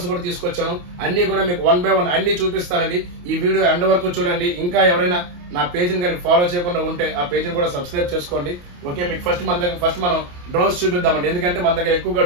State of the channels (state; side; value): late; left; 28 ms